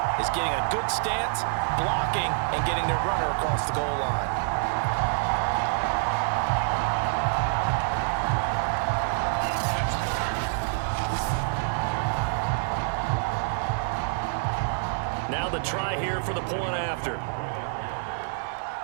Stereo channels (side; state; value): left; silent; digital silence